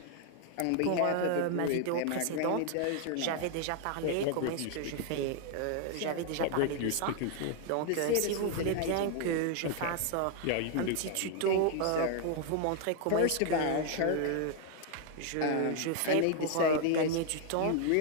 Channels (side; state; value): both; different; correlation 0.00